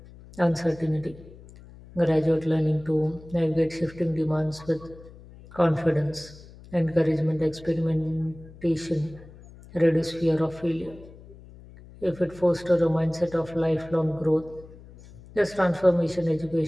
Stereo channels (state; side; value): noise; left; hum, 20 dB below the sound